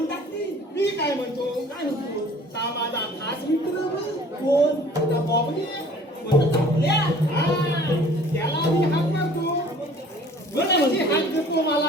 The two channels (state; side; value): normal; both; correlation 0.51